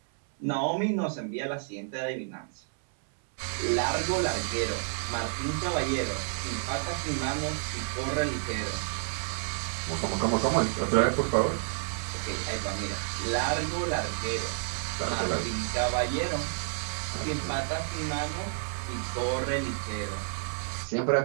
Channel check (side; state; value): left; silent; 58 dB below the other